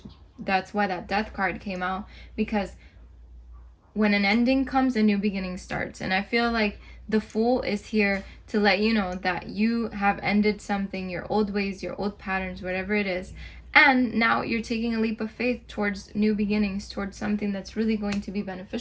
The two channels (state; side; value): identical; both; correlation 1.00